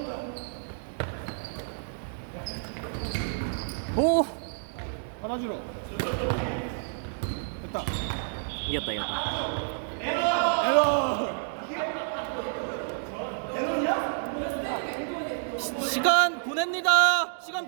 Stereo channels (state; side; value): silent; left; digital silence